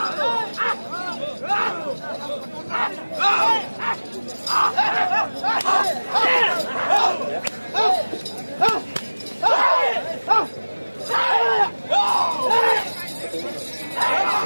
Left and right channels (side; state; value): both; inverted; correlation -1.00